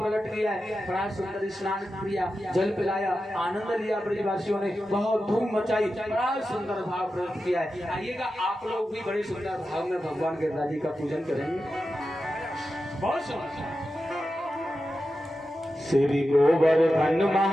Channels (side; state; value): both; normal; correlation 0.91